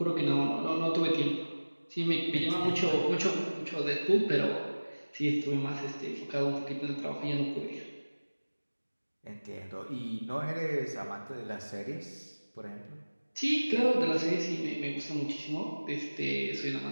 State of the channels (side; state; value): both; inverted; correlation -1.00